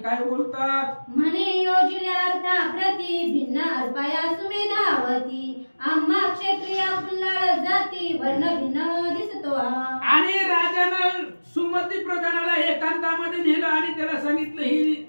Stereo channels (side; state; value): both; inverted; correlation -1.00